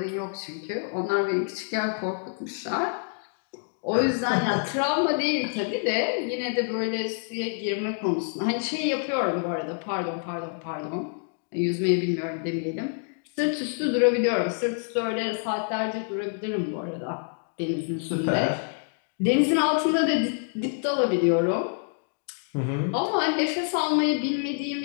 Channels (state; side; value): silent; right; 57 dB below the other